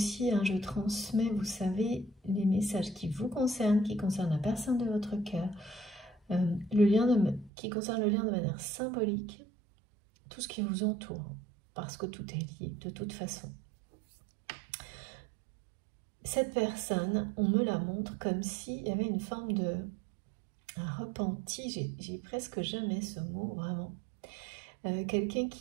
je transmets, vous savez, les messages qui vous concernent, qui concernent la personne de votre cœur, qui concerne le lien de manière symbolique, tout ce qui vous entoure, parce que tout est lié de toute façon. Cette personne, on me la montre comme s'il y avait une forme de repenti, j'ai presque jamais ce mot, vraiment. Quelqu'un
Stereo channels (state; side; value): drops out; left; at 7.5 s